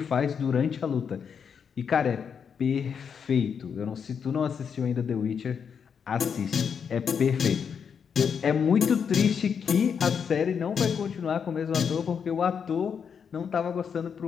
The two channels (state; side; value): quieter; right; 6.9 dB